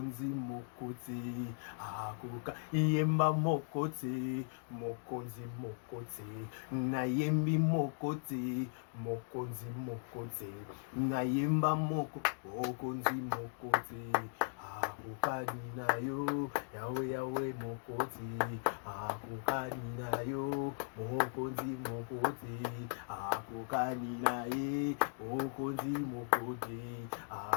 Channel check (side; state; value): right; silent; digital silence